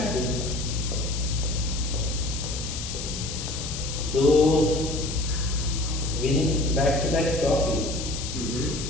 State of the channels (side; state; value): left; noise; hiss, 7 dB below the sound